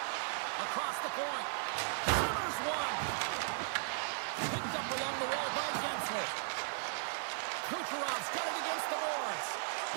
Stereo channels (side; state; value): left; silent; digital silence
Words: Across the point. Hammers one. Picked up along the wall by Gensel. Kucherov's got it against the boards.